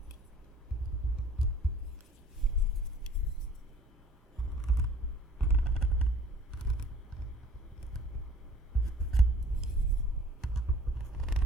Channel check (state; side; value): normal; both; correlation 0.52